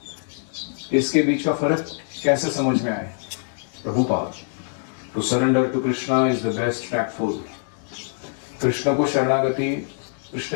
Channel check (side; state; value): right; silent; 63 dB below the other